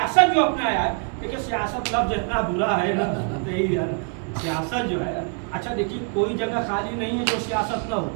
जो अपनाया है, देखिए सियासत लफ्ज इतना बुरा है ना, यही है ना सियासत जो है। अच्छा देखिए कोई जगह खाली नहीं है जो सियासत ना हो,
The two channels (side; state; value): left; quieter; 37.8 dB